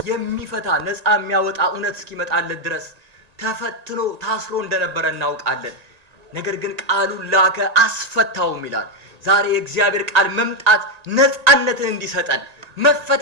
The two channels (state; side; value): late; left; 1.8 ms